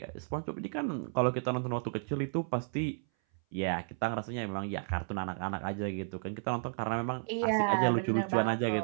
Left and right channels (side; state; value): left; silent; 56 dB below the other